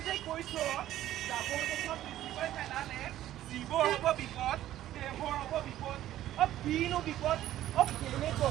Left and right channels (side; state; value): left; quieter; 13.2 dB